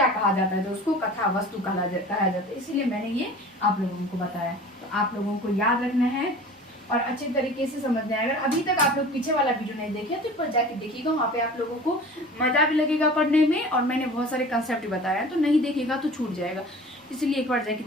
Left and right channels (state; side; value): normal; both; correlation 0.41